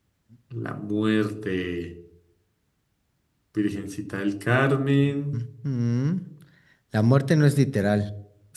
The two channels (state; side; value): identical; both; correlation 1.00